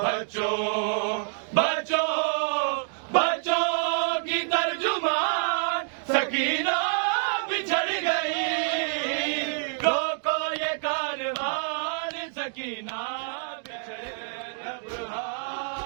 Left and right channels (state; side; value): silent; left; 60 dB below the other